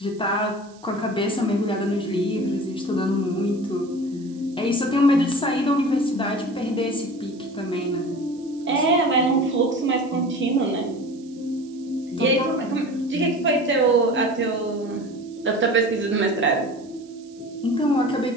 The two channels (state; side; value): noise; right; hiss, 27 dB below the sound